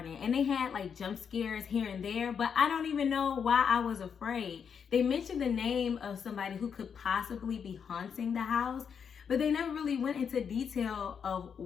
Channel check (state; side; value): quieter; right; 7.0 dB